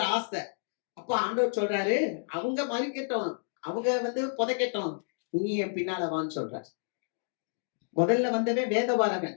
ஆசை. அப்ப ஆண்டவர் சொல்றாரு, அவங்க மறிக்கட்டும், அவங்க வந்து புதைக்கட்டும், நீ என் பின்னால வான்னு சொல்றாரு. முதல்ல வந்தவன் வேதபாரகன்,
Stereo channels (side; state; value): right; silent; digital silence